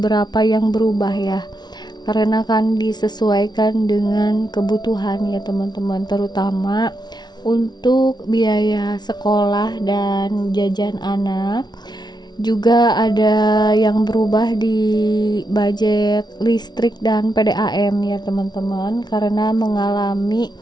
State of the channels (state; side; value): late; right; 0.20 ms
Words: yang berubah ya, karena kan disesuaikan dengan kebutuhan ya teman-teman, terutama untuk biaya sekolah dan jajan anak. Juga ada yang berubah di budget listrik dan PDAM ya teman-teman, karena mengalami